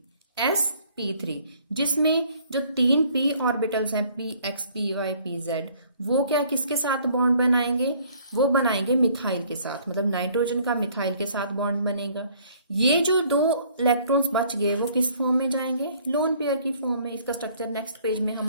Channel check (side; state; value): both; inverted; correlation -0.59